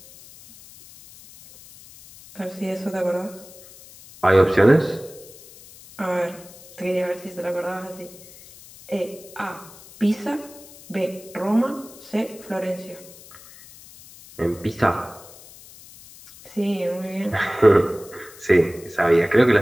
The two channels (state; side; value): noise; left; hiss, 20 dB below the sound